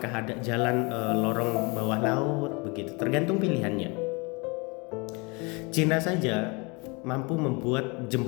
ada jalan lorong bawah laut, begitu. Tergantung pilihannya. Cina saja mampu membuat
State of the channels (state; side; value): quieter; right; 29.4 dB